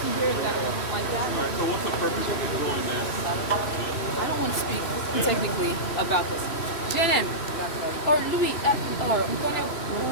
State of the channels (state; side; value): late; right; 2.9 ms